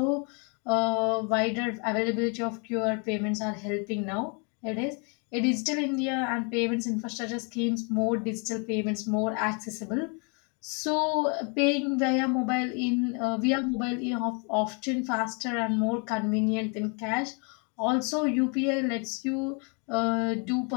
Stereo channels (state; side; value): quieter; right; 35.9 dB